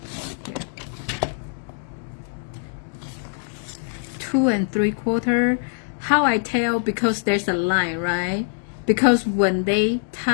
Here. 2 3/4. How I tell? Because there's a line, right? Because when they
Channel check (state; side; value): silent; right; digital silence